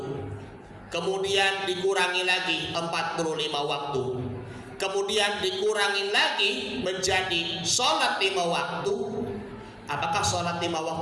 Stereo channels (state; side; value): identical; both; correlation 1.00